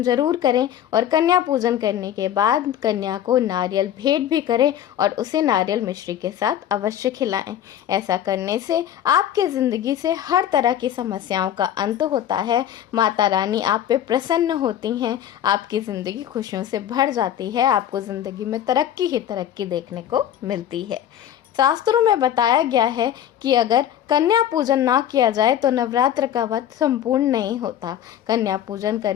ज़रूर करें। और कन्या पूजन करने के बाद कन्या को नारियल भेंट भी करें और उसे नारियल मिश्री के साथ अवश्य खिलाएं। ऐसा करने से आपके ज़िंदगी से हर तरह की समस्याओं का अंत होता है। माता रानी आप पे प्रसन्न होती हैं, आपकी ज़िंदगी खुशियों से भर जाती है, आपको ज़िंदगी में तरक्की ही तरक्की देखने को मिलती है। शास्त्रों में बताया गया है कि अगर कन्या पूजन ना किया जाए तो नवरात्र का व्रत संपूर्ण नहीं होता। कन्या पूजन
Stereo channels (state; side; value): quieter; right; 10.7 dB